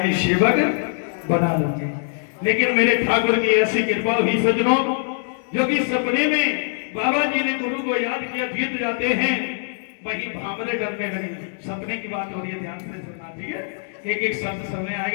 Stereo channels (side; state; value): right; silent; digital silence